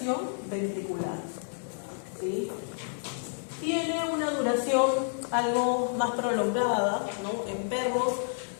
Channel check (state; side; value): silent; right; 58 dB below the other